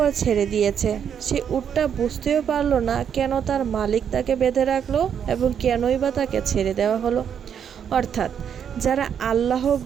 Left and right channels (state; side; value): quieter; left; 8.1 dB